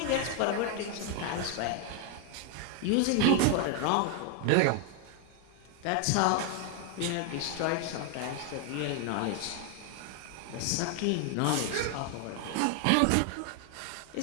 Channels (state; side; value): different; both; correlation 0.01